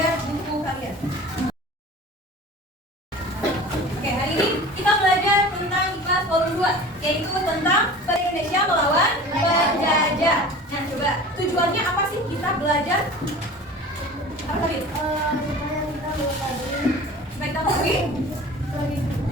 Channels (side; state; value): both; normal; correlation 0.39